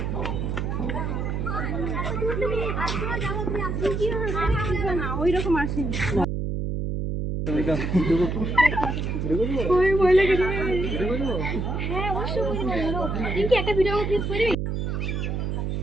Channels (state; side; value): noise; right; hum, 1 dB below the sound